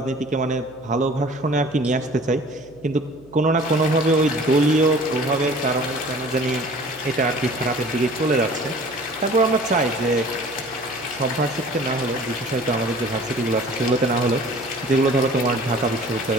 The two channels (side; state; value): right; noise; hum, 26 dB below the sound